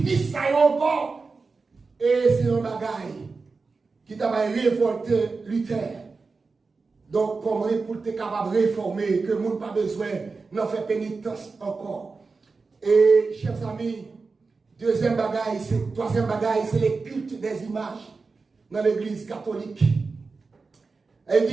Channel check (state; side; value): quieter; left; 4.3 dB